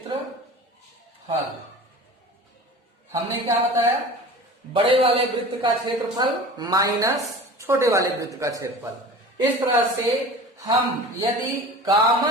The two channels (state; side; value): normal; both; correlation 0.38